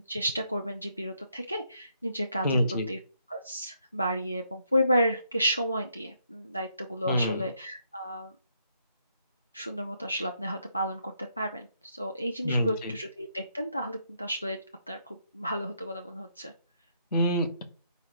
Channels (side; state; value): both; inverted; correlation -0.74